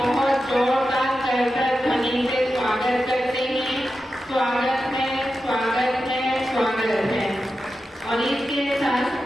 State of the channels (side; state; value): both; normal; correlation 0.91